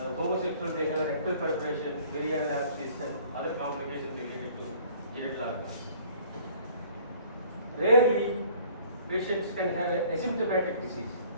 homosexuals, they have a rectal perforation, varial abscess, and other complications related to genital organs. Rarely, patients can have an asymptomatic disease.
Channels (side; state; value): both; inverted; correlation -0.54